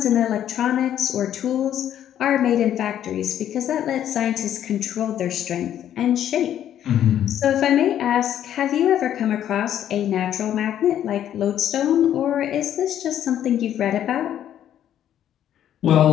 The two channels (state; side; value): quieter; right; 10.7 dB